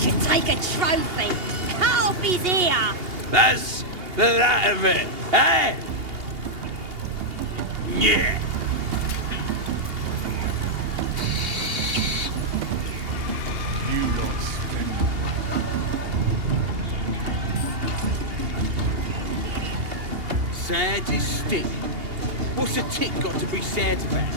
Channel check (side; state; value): left; late; 2.8 ms